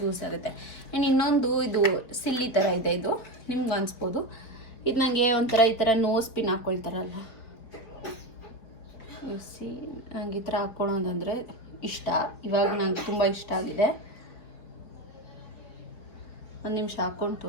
ಆಗುತ್ತೆ. ಆ್ಯಂಡ್ ಇನ್ನೊಂದು ಇದು ಸಿಲ್ಲಿ ಥರ ಇದೆ, ಇದು ನಿಮ್ಗೆ ಅನಿಸ್ಬೋದು. ಇದು ನನಗೆ ಒಂಥರ ಈ ಥರ ನೋಸ್ ಪಿನ್ ಹಾಕ್ಕೊಳ್ತಾರಲ್ಲ, ನಂಗೆ ಈ ಥರ ಹಾಕ್ಕೊಳ್ಳೋದಂದರೆ ಇಷ್ಟ. ಇವಾಗ ನಂಗೆ ತುಂಬ ಇಷ್ಟ ಆಗಿದೆ. ಒಂದು ನಿಮಿಷ ಹಾಕ್ಕೊಂಡು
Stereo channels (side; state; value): right; late; 4.3 ms